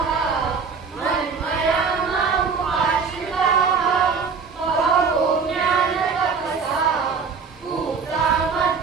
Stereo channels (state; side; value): quieter; left; 5.4 dB